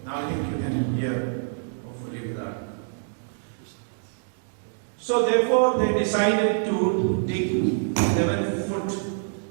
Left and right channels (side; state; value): left; silent; digital silence